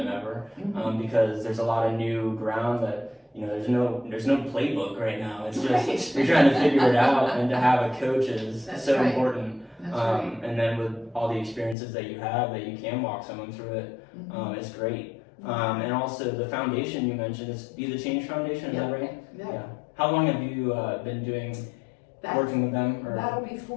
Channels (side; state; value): right; drops out; at 11.8 s